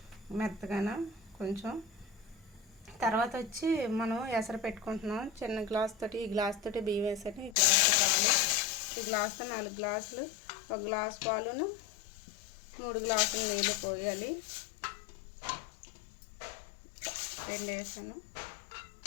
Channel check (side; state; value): right; drops out; at 7.6 s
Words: మెత్తగాన కొంచెం. తర్వాత వచ్చి మనం ఎసరు పెట్టుకుంటున్నాం. చిన్న గ్లాస్ తోటి ఈ గ్లాస్ తోటి బియ్యం వేసాను, ఈ గ్లాస్తో పాలు, ఈ గ్లాస్తో 4 గ్లాసులు, 1 గ్లాస్ పాలును 3 గ్లాసులు నీళ్ళు పోయాలి. 2 వేసాను,